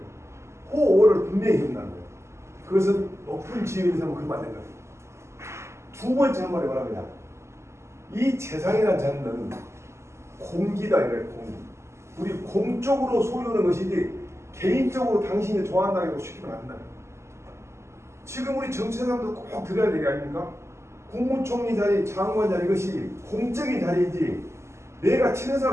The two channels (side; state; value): left; late; 0.13 ms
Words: 호오를 분명히 해준다는 거예요. 그것은 높은 지위에 있으면 그러면 안 된다. 두 번째 한 말이 뭐랍니다. 이 재상이라는 자는 공기다 이래요. 공기. 우리 공적으로 소유하는 것이지 개인적으로 당신이 좋아한다고 시키면 안 된다. 지금 우리 정치사람도 꼭 들어야 되는 게 아닙니까? 국무총리 자리, 장관 자리 이것이 공적인 자리이지 내가 친한